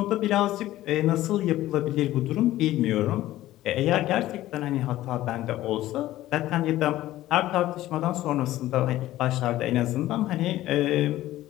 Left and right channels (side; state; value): right; quieter; 15.1 dB